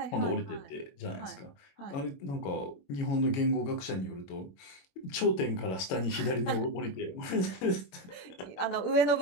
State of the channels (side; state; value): right; late; 22 ms